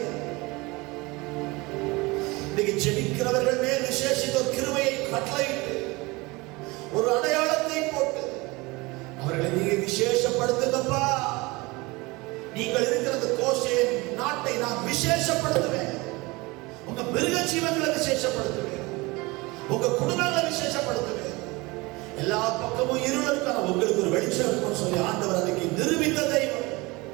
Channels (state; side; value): quieter; left; 23.7 dB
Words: இன்னைக்கு ஜெபிக்கிறவர்கள் மேல் விசேஷித்த ஒரு கிருபையை கட்டளையிட்டு ஒரு அடையாளத்தை போட்டு அவர்களை நீங்க விசேஷப்படுத்துங்கப்பா. நீங்கள் இருக்கிற கோஷேன் நாட்டை நான் விசேஷப்படுத்துவேன். உங்க மிருக ஜீவன்களை விசேஷப்படுத்துவேன். உங்க குடும்பங்களை விசேஷப்படுத்துவேன். எல்லா பக்கமும் இருள் இருக்கான உங்களுக்கு ஒரு வெளிச்சம் இருக்கும்னு சொல்லி ஆண்டவர் அன்னைக்கு நிரூபித்த தெய்வம்.